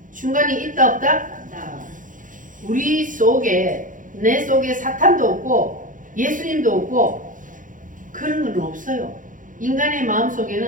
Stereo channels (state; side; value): late; left; 0.38 ms